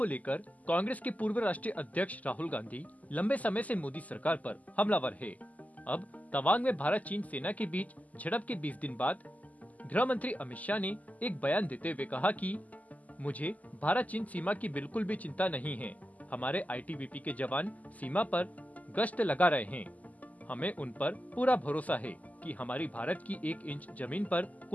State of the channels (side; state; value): right; late; 0.076 ms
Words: लेकर कांग्रेस के पूर्व राष्ट्रीय अध्यक्ष राहुल गांधी लंबे समय से मोदी सरकार पर हमलावर है। अब तवांग में भारत चीन सेना के बीच झड़प के 20 दिन बाद गृह मंत्री अमित शाह ने एक बयान देते हुए कहा कि मुझे भारत चीन सीमा की बिल्कुल भी चिंता नहीं है। हमारे आईटीबीपी के जवान सीमा पर गश्त लगा रहे हैं। हमें उन पर पूरा भरोसा है कि हमारी भारत की 1 इंच जमीन पर